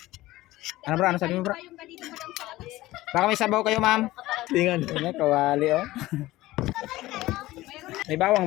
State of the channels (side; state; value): right; quieter; 17.4 dB